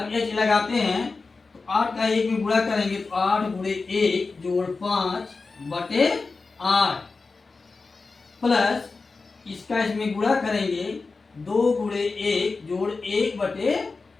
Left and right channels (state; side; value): quieter; right; 4.1 dB